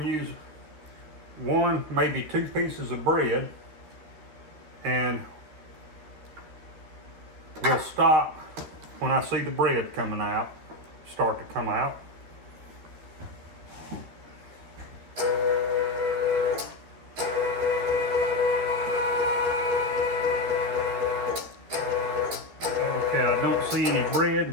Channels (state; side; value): late; left; 13 ms